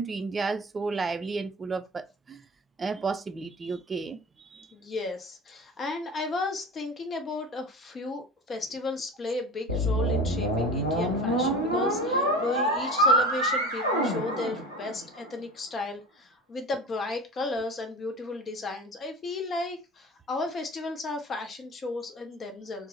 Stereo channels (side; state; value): both; normal; correlation 0.35